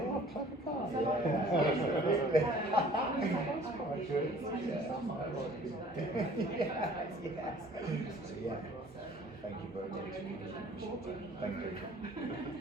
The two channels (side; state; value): both; normal; correlation 0.52